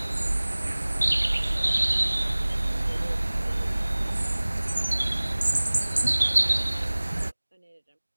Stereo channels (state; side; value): inverted; both; correlation -1.00